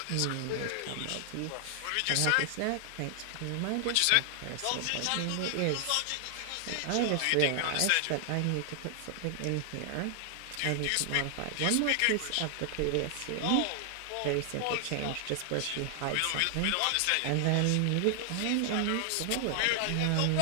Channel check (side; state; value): both; different; correlation 0.00